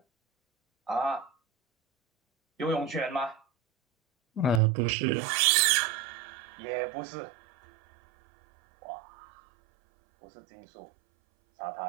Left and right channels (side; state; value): left; drops out; at 4.6 s